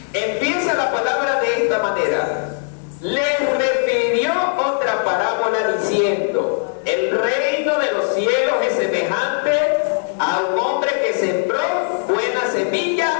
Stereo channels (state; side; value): silent; right; 55 dB below the other